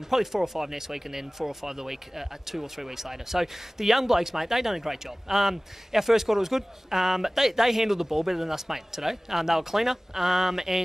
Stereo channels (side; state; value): both; normal; correlation 0.98